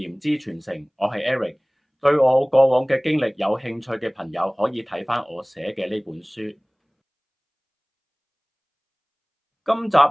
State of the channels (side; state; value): both; identical; correlation 1.00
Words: 之傳承，我係 Eric。對我過往嘅經歷有興趣嘅朋友，可以睇返我寫嘅呢本書。今集